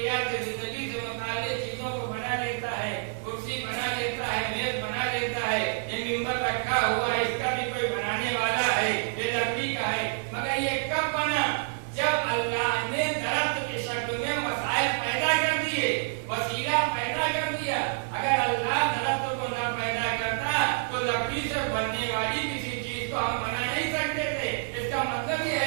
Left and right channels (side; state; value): left; silent; 59 dB below the other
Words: زندگی سے متعلق چیزوں کو بنا لیتا ہے. کرسی بنا لیتا ہے, میز بنا لیتا ہے, یہ ممبر رکھا ہوا ہے اس کا بھی کوئی بنانے والا ہے, یہ لکڑی کا ہے. مگر یہ کب بنا؟ جب اللہ نے درخت کی شکل میں وسائل پیدا کر دیے, وسیلہ پیدا کر دیا. اگر اللہ درخت کو نہ پیدا کرتا تو لکڑی سے بننے والی کسی چیز کو ہم بنا نہیں سکتے تھے. اس کا مطلب یہ